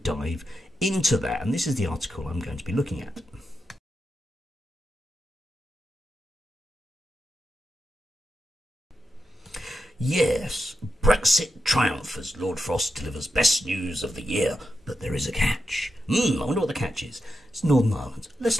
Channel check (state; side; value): normal; both; correlation 0.88